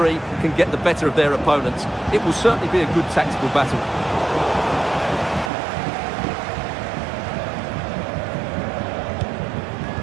can get the better of their opponents. It will certainly be a good tactical battle.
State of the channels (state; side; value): drops out; left; at 5.5 s